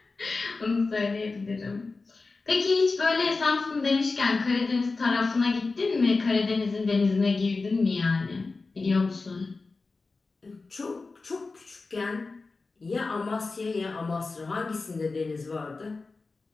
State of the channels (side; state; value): right; quieter; 3.9 dB